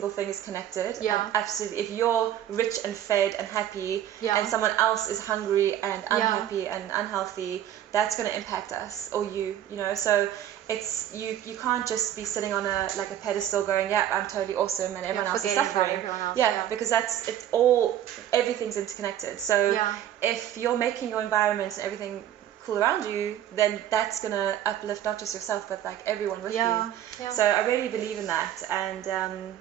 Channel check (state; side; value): quieter; left; 11.2 dB